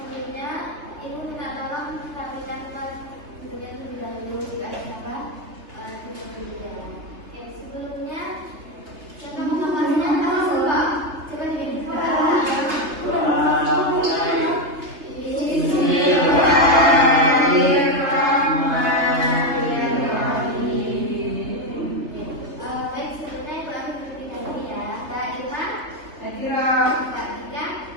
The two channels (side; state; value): left; late; 3.3 ms